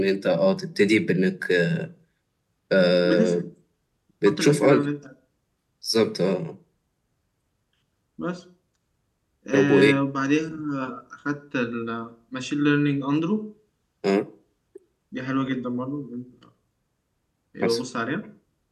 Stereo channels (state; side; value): identical; both; correlation 1.00